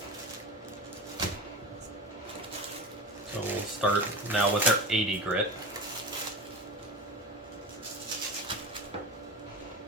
So we'll start now with our 80 grit.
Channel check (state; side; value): normal; both; correlation 0.28